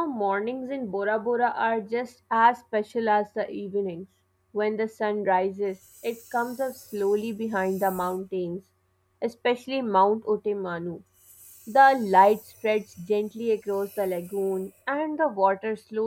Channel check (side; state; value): both; identical; correlation 1.00